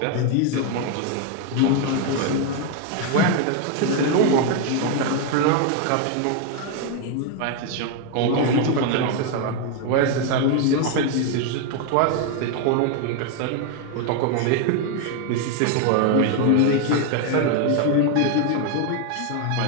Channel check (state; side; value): different; both; correlation 0.01